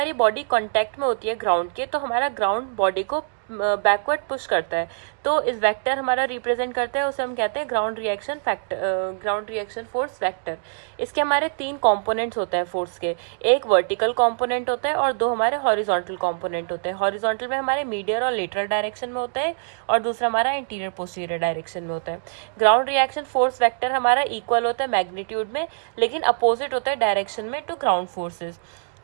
बॉडी कांटेक्ट में होती है ग्राउंड के, तो हमारा ग्राउंड बॉडी को बैकवर्ड पुश करता है, तो इस वेक्टर हमारा रिप्रेजेंट करता है, उसे हम कहते हैं ground reaction factor, ground reaction force vector. इसके हमारे 3 कंपोनेंट्स होते हैं फोर्स के। एक वर्टिकल कंपोनेंट होता है और 2 हमारे हॉरिजॉन्टल कंपोनेंट होते हैं। हॉरिजॉन्टल में हमारे मीडियल और लेटरल डायरेक्शन में होता है, और दूसरा हमारा इंटीरियर पोस्टीरियर डायरेक्शन में होता है। ग्राउंड रिएक्शन फोर्स वेक्टर हमारा इक्वल होता है मैग्नीट्यूड में, लेकिन अपोजिट होता है डायरेक्शन में to ground forces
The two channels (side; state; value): left; silent; digital silence